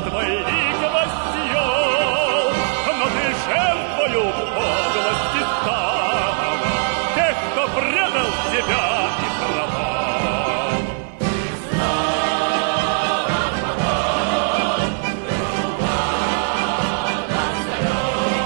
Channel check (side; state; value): left; silent; 57 dB below the other